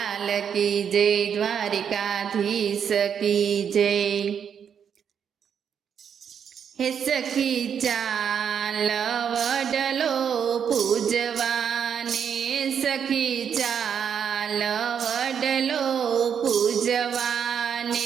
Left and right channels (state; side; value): quieter; left; 7.8 dB